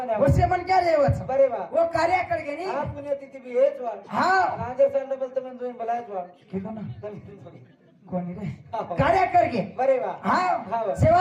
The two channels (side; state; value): both; identical; correlation 1.00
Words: वसे मन क्या रेवच बरे वा वो कार्य कर गे नी हा पुण्यतिथी बी हेच वा हा राजे सांड बोलतो पण तुम्ही बोलायच वा किलो ना कोणी रे हा. कार्य कर गे बरे वा हा हा वा.